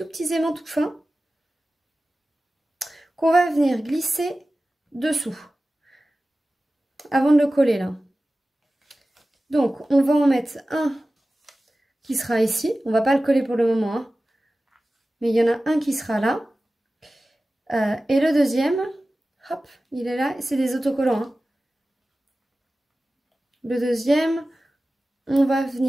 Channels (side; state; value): both; normal; correlation 0.96